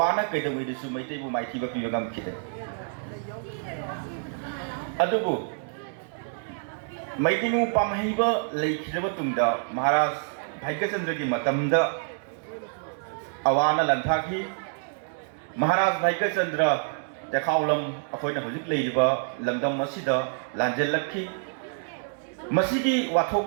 ꯀꯩꯗꯧꯉꯩꯗꯁꯨ ꯃꯩꯇꯩꯕꯨ ꯃꯥꯏꯊꯤꯕ ꯄꯤꯕ ꯉꯝꯈꯤꯗꯦ ꯑꯗꯨꯕꯨ ꯃꯩꯇꯩꯉꯨ ꯄꯥꯝꯍꯩꯕ ꯂꯩꯈꯤꯗ꯭ꯔꯕ ꯇꯨꯡꯗ ꯃꯍꯥꯔꯥꯖ ꯚꯥꯏꯒꯆꯟꯗ꯭ꯔꯒꯤ ꯃꯇꯝꯗ ꯑꯋꯥꯅ ꯂꯟꯊꯥꯈꯤ ꯃꯍꯥꯔꯥꯖ ꯚꯥꯏꯒꯆꯟꯗ꯭ꯔ ꯇꯦꯈꯥꯎꯂꯝ ꯑꯩꯈꯣꯏꯅ ꯍꯧꯖꯤꯛ ꯂꯩꯔꯤꯕ ꯂꯝꯗꯝ ꯑꯁꯤꯗ ꯂꯥꯟꯖꯦꯜꯂꯛꯈꯤ ꯃꯁꯤꯒꯤ ꯋꯥꯊꯣꯛ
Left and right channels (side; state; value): left; silent; digital silence